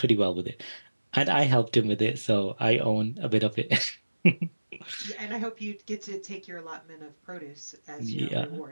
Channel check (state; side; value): inverted; both; correlation -1.00